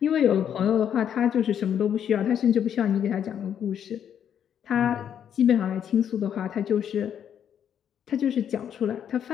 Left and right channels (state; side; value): quieter; right; 9.0 dB